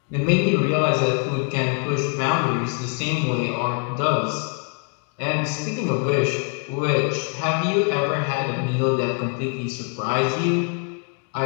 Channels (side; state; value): right; quieter; 38.4 dB